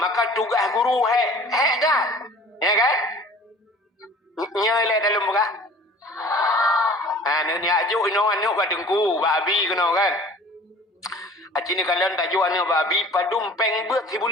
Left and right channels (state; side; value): normal; both; correlation 0.46